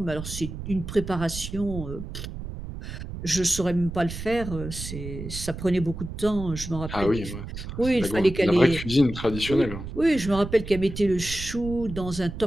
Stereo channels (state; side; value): noise; right; rumble, 9 dB below the sound